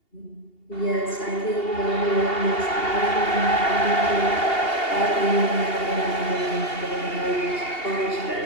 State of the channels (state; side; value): late; right; 2.8 ms